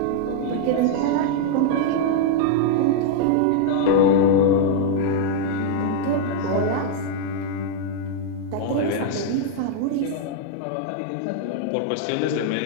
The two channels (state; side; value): different; both; correlation 0.00